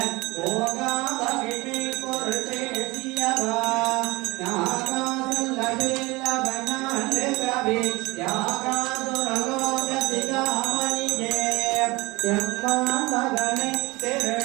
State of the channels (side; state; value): left; quieter; 22.7 dB